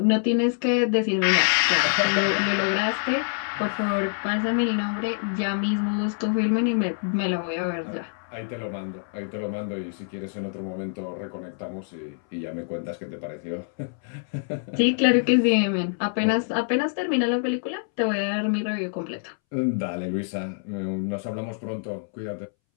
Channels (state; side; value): silent; right; 61 dB below the other